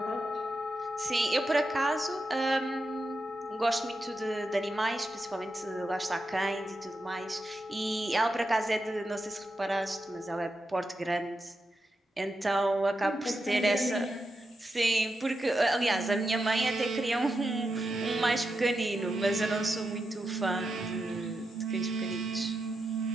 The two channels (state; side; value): normal; both; correlation 0.87